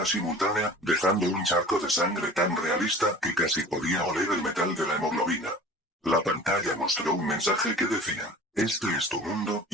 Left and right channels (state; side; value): normal; both; correlation 0.42